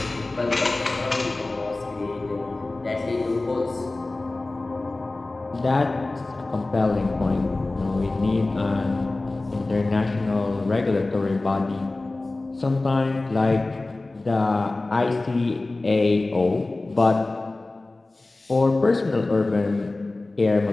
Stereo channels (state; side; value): quieter; right; 3.1 dB